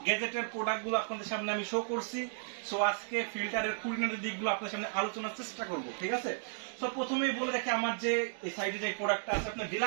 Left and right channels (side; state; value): left; silent; digital silence